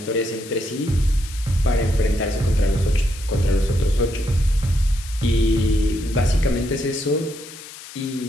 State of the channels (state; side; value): noise; left; hiss, 15 dB below the sound